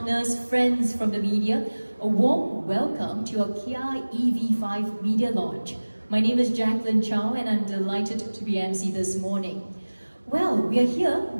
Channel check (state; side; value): inverted; both; correlation -1.00